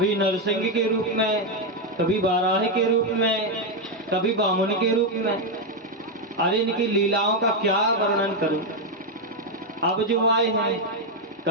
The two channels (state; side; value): normal; both; correlation 0.04